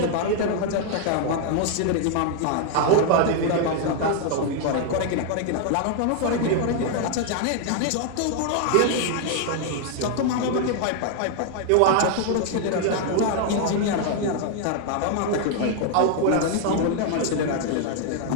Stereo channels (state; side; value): different; both; correlation 0.00